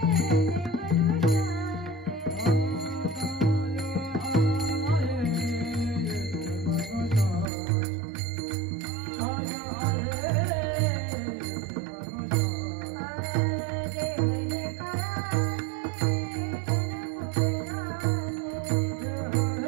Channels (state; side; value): drops out; left; at 7.5 s